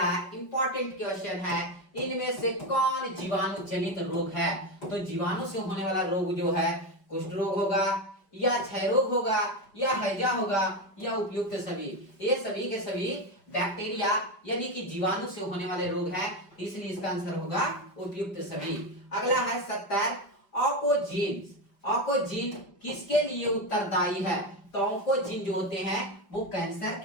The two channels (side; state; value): right; late; 5.3 ms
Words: इंपॉर्टेंट क्वेश्चन है, इनमें से कौन जीवाणु जनित रोग है? तो जीवाणु से होने वाला रोग जो है कुष्ठ रोग होगा या क्षय रोग होगा या हैजा होगा या उपयुक्त सभी। ये सभी के सभी बैक्टीरिया यानी कि जीवाणु से होने वाले रोग हैं, इसलिए इसका आंसर होगा उपयुक्त सभी। अगला है 70, ऑकोजीन। ऑकोजीन किसके लिए उत्तरदायी है? तो ऑकोजीन जो होते हैं वो कैंसर